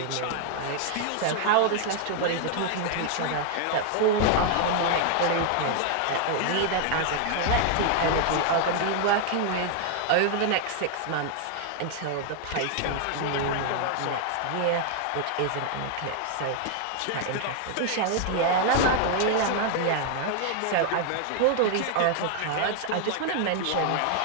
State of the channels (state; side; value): different; both; correlation 0.00